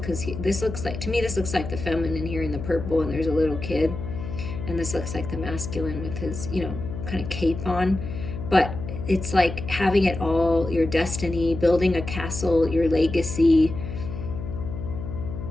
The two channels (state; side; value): noise; left; hum, 8 dB below the sound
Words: because this looks like the feminine here in the purple, and there's a little kid. And this looks like the masculine with his, kind of cape on. But it's like having it all, your destiny, building a castle, your legacy.